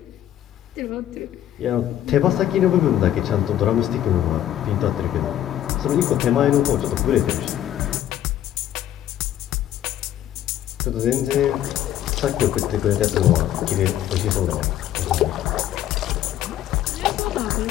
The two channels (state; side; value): quieter; right; 11.9 dB